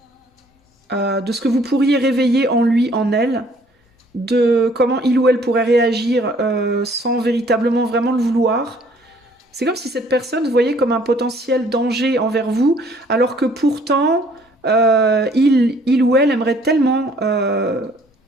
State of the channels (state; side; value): normal; both; correlation 0.59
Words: De ce que vous pourriez réveiller en lui, en elle, de comment il ou elle pourrait réagir sans véritablement vraiment le vouloir. C'est comme si cette personne vous voyait comme un potentiel danger envers vous, alors que pourtant, il ou elle aimerait tellement